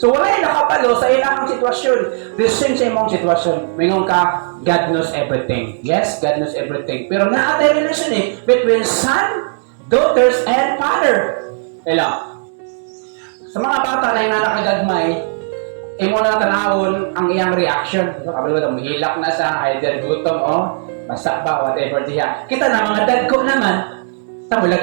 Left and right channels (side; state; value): left; silent; 67 dB below the other